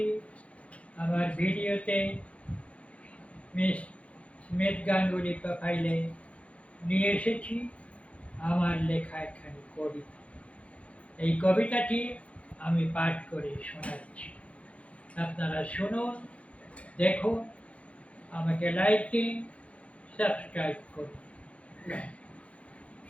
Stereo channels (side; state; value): right; late; 0.063 ms